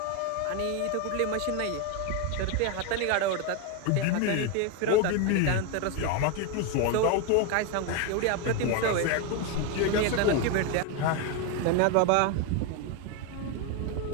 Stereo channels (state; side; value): different; both; correlation 0.02